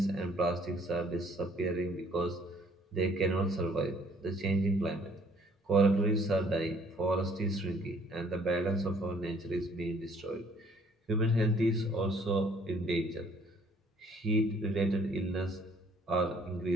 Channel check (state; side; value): normal; both; correlation 0.60